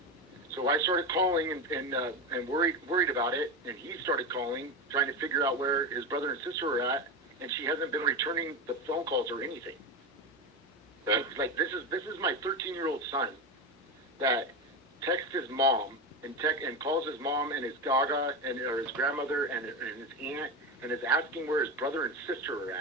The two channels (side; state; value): both; normal; correlation 0.18